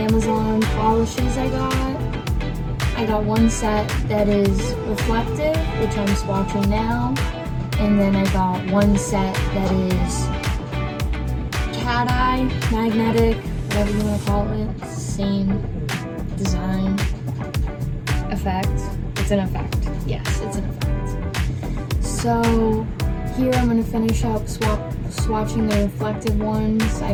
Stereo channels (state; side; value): identical; both; correlation 1.00